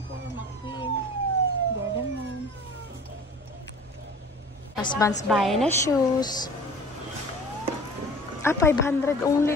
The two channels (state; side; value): normal; both; correlation 0.44